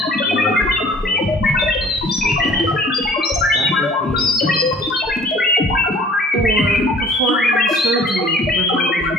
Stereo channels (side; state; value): both; normal; correlation 0.51